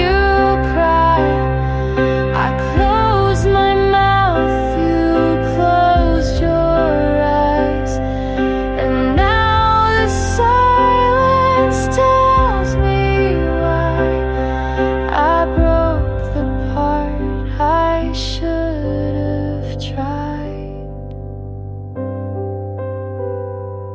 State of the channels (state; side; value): identical; both; correlation 1.00